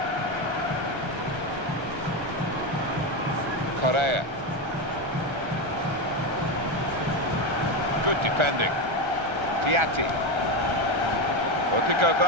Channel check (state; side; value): late; left; 1.3 ms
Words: Correa. Good defending. Piatti.